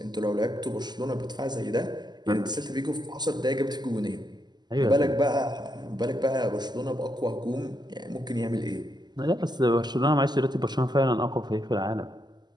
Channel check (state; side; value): late; left; 0.21 ms